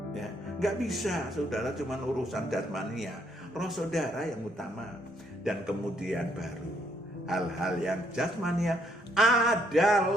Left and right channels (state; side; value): normal; both; correlation 0.70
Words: Ya, nggak bisa saudara cuma urusan jasmania, roh saudara yang utama, dan kemudian baru hal-hal yang jasmania